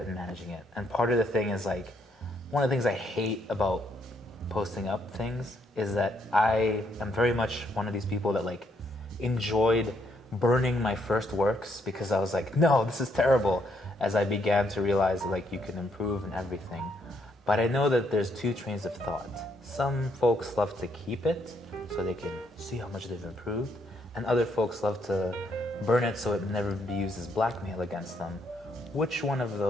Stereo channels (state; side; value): normal; both; correlation 0.73